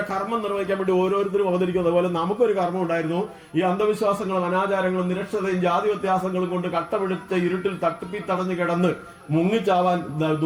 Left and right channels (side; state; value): both; identical; correlation 1.00